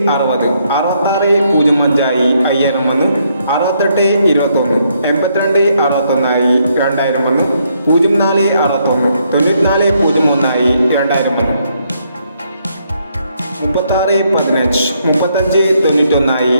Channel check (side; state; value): both; inverted; correlation -0.74